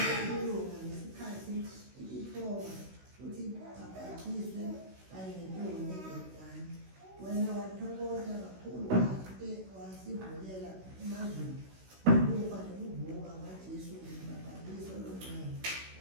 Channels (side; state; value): left; late; 16 ms